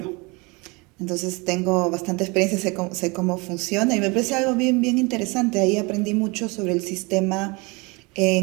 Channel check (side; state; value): left; quieter; 27.4 dB